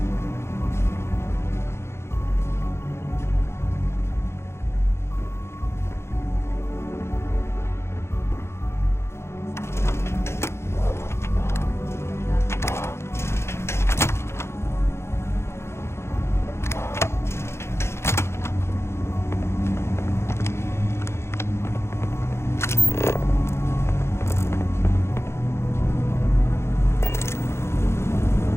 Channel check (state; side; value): late; right; 0.13 ms